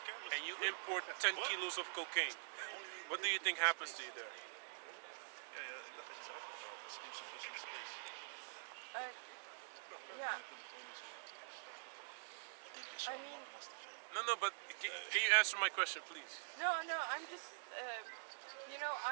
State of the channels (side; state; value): left; silent; digital silence